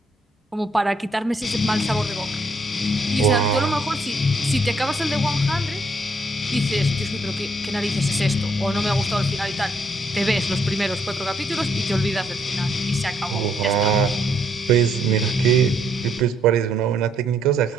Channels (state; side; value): normal; both; correlation 0.71